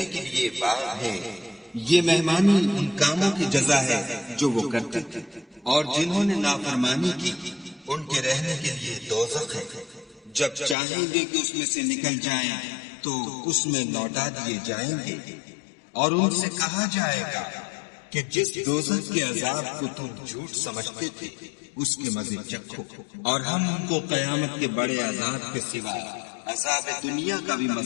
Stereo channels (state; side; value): drops out; right; at 10.8 s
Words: کے لیے باغ ہیں، یہ مہمانی ان کاموں کی جزا ہے جو وہ کرتے تھے، اور جنہوں نے نافرمانی کی ان کے رہنے کے لیے دوزخ ہے۔ جب چاہیں گے کہ اس میں سے نکل جائیں تو اس میں لوٹا دیے جائیں گے، اور ان سے کہا جائے گا کہ جس دوزخ کے عذاب کو تم جھوٹ سمجھتے تھے اس کے مزے چکھو، اور ہم ان کو قیامت کے بڑے عذاب کے سوا عذاب دنیا کا بھی